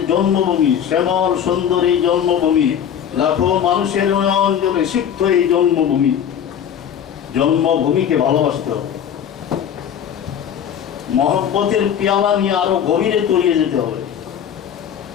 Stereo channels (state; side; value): quieter; right; 8.9 dB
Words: জন্মভূমি শ্যামল সুন্দর এই জন্মভূমি লাখো মানুষের অঞ্চলে সিক্ত এই জন্মভূমিকে ভালোবাসতে হবে, মহব্বতের পেয়ালা নিয়ে আরো গভীরে তলিয়ে যেতে হবে।